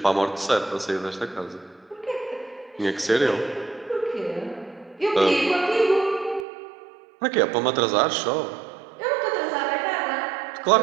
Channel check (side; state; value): left; drops out; at 6.5 s